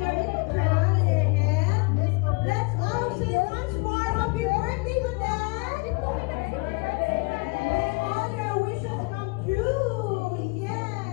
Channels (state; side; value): quieter; right; 27.5 dB